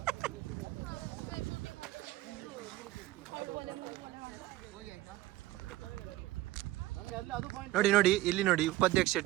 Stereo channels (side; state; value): left; quieter; 17.3 dB